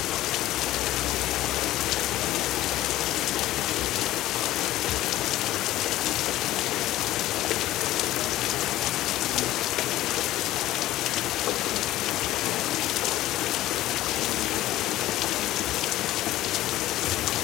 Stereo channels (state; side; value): quieter; right; 15.2 dB